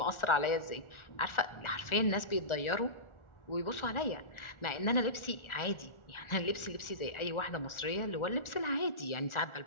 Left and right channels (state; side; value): late; right; 1.4 ms